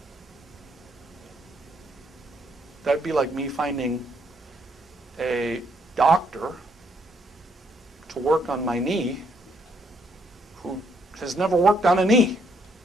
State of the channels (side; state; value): both; normal; correlation 0.71